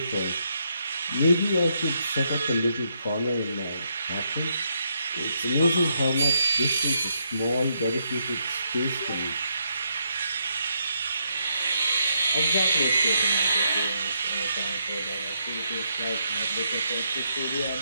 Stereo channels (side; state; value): both; inverted; correlation -0.77